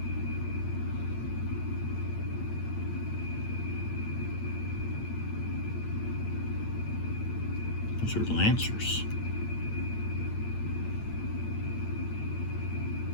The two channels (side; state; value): right; late; 8.8 ms